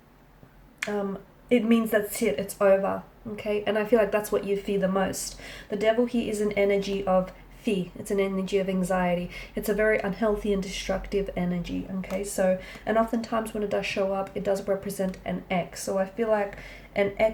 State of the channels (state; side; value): identical; both; correlation 1.00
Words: it means that's it, it's over, okay? And I feel like that's what you fear the most. The Devil here is an energy of fear. It's an energy of anxiety. It's a very unhealthy and destructive energy, okay? So, and oftentimes when it does show up, it does represent an X. So I feel like an